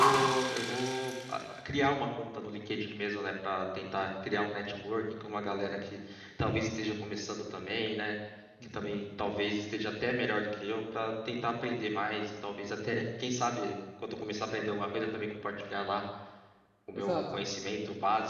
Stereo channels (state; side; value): identical; both; correlation 1.00